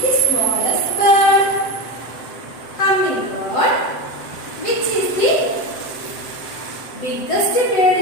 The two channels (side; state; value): right; late; 7.8 ms